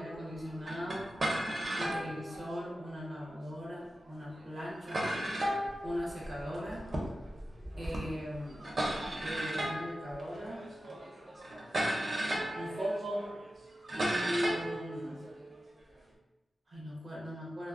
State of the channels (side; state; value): both; normal; correlation 0.93